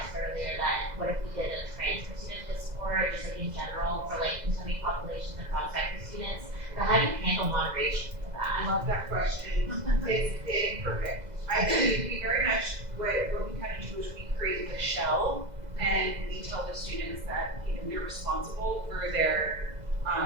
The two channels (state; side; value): late; left; 2.0 ms